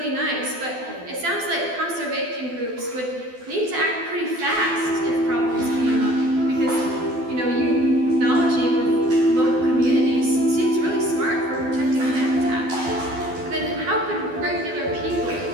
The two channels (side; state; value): left; late; 12 ms